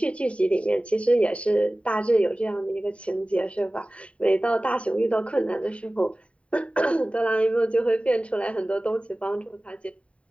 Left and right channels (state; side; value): late; right; 0.062 ms